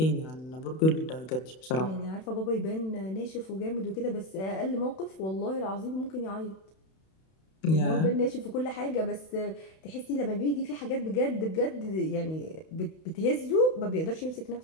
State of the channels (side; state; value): right; late; 31 ms